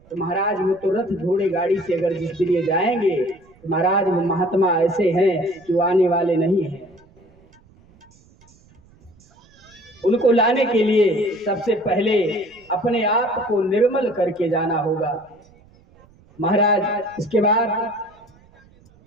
तो महाराज वो तो रथ घोड़े गाड़ी से अगर जिस दिन ये जाएंगे तो महाराज वो महात्मा ऐसे हैं कि वो आने वाले नहीं हैं। उनको लाने के लिए सबसे पहले अपने आप को निर्मल करके जाना होगा। महाराज इसके बाद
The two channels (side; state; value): right; noise; rumble, 29 dB below the sound